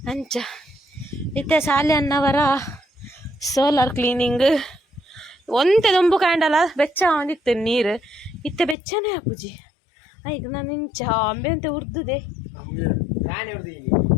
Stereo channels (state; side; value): drops out; right; at 8.8 s